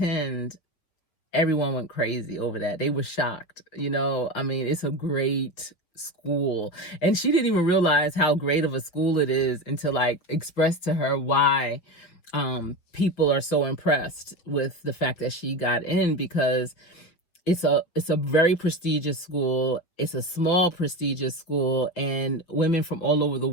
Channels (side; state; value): right; late; 6.0 ms